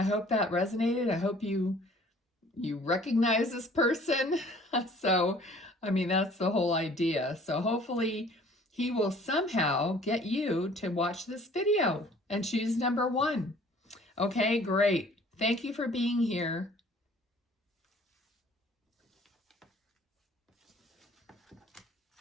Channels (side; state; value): both; normal; correlation 0.53